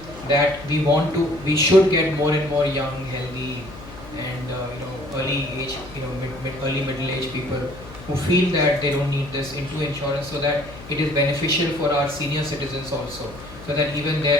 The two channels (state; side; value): noise; left; hum, 16 dB below the sound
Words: that we should get more and more young, healthy, and early age, early middle age people who feel that they don't need this into insurance, so that it is beneficial for our senior citizens also, so that even